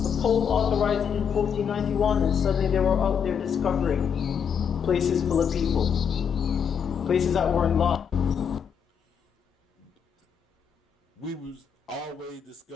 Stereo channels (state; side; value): quieter; right; 7.3 dB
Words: Pope authorized it in 1491, and suddenly they were out there discovering places full of people, places that weren't lost. We was always